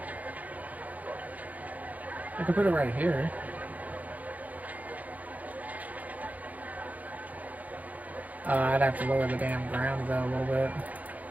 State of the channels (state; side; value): late; left; 0.077 ms